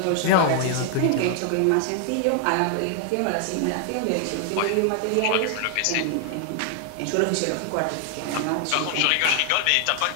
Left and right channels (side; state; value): both; different; correlation 0.00